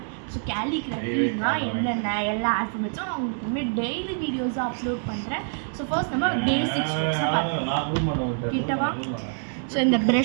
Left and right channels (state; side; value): silent; left; 61 dB below the other